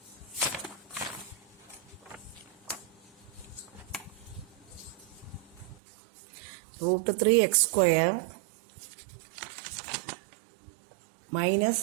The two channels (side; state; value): left; drops out; at 5.8 s